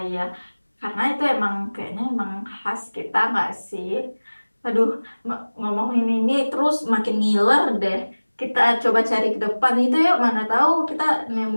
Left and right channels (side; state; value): both; inverted; correlation -1.00